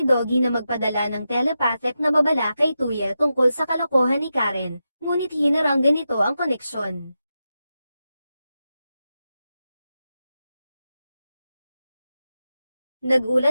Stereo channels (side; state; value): both; inverted; correlation -0.89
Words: Doggy na magpadala ng telepathic na babala kay Tuya tungkol sa kalokohan ni Karen, ngunit hinaranggan nito ang koneksyon.